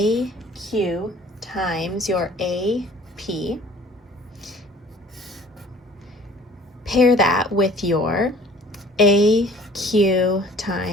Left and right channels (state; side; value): normal; both; correlation 0.51